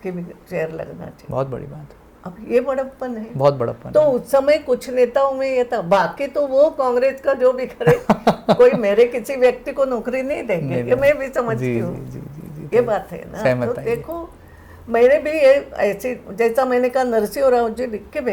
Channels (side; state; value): both; identical; correlation 1.00